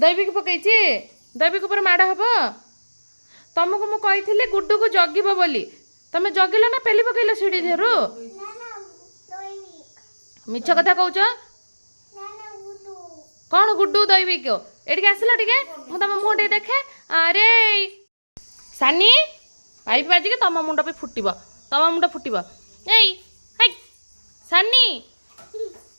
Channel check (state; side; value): inverted; both; correlation -1.00